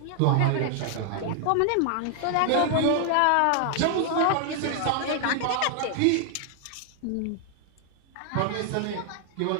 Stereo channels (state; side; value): different; both; correlation 0.00